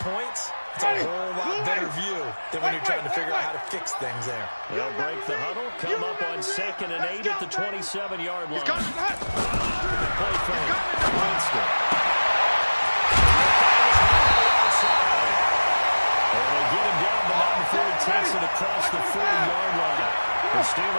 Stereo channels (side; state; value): both; inverted; correlation -1.00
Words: it's a whole lot better view than when you're trying to figure out how to fix things there. They'll break the huddle, come up on 2nd and 8 at the 27-yard line. Play fake. Winston. And they get him down, but not before he takes it across the 4-yard line. The